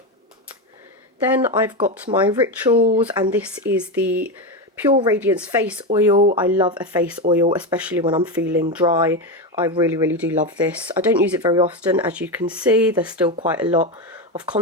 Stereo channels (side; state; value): both; normal; correlation 0.14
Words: Then I've got my Rituals, and this is the Pure Radiance Face Oil. I love a face oil, especially when I'm feeling dry. I really do love this. I don't use it very often, as you can see. There's still quite a lot of